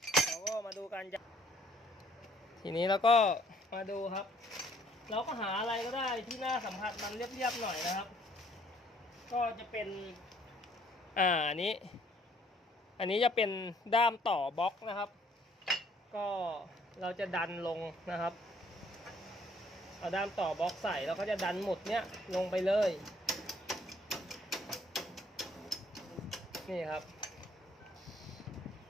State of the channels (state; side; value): normal; both; correlation 0.62